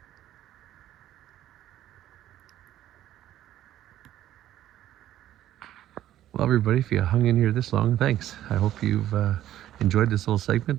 Well, everybody, if you hung in here this long, thanks. I hope you've enjoyed this little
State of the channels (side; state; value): left; quieter; 12.7 dB